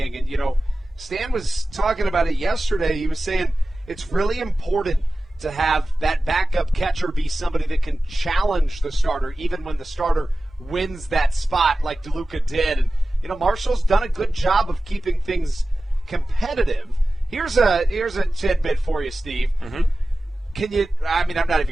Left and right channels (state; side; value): normal; both; correlation 0.95